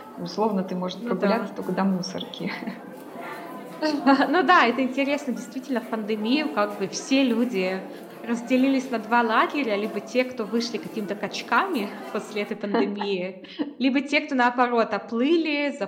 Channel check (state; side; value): identical; both; correlation 1.00